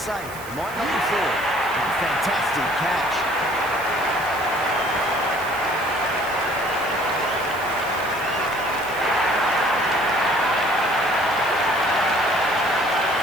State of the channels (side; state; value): right; noise; hiss, 17 dB below the sound